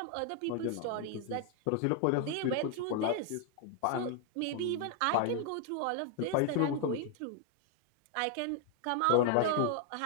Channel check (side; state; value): both; different; correlation 0.00